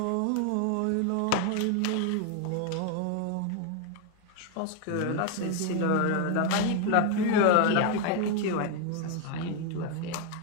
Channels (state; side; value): different; both; correlation 0.01